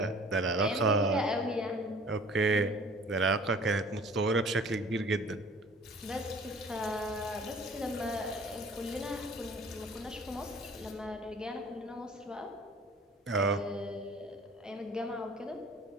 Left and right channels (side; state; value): both; normal; correlation 0.49